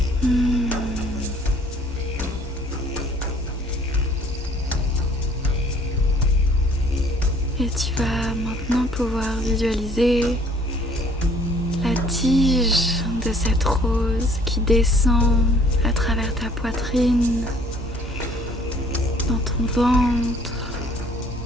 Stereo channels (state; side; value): normal; both; correlation 0.57